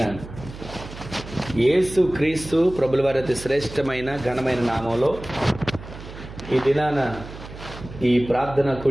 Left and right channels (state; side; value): noise; right; hum, 14 dB below the sound